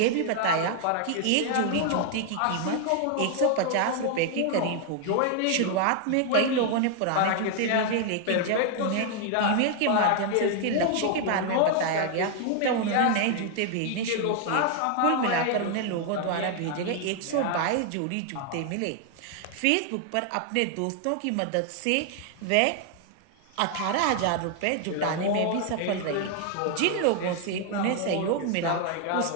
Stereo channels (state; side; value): different; both; correlation 0.00